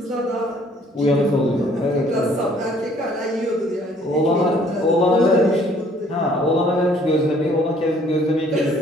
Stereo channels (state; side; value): normal; both; correlation 0.60